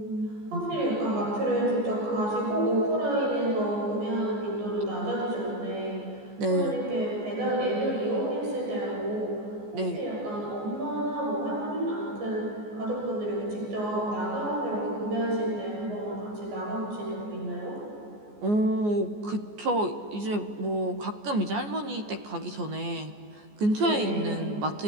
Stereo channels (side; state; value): left; late; 14 ms